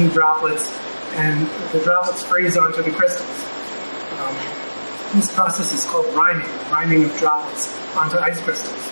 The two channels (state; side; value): inverted; both; correlation -1.00